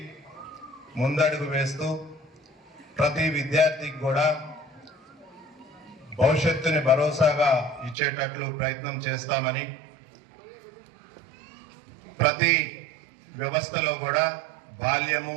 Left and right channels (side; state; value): left; drops out; at 8.0 s